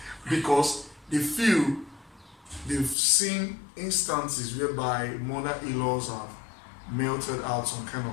Because they feel they've seen instances whereby mother-in-laws have melted out some kind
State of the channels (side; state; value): right; drops out; at 3.0 s